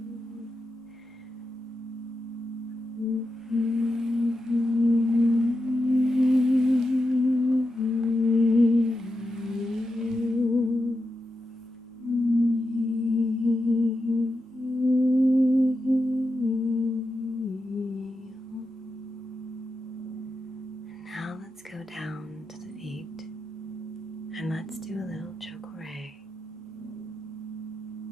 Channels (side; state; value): both; normal; correlation 0.88